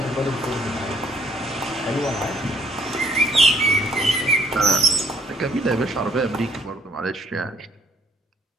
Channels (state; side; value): normal; both; correlation 0.63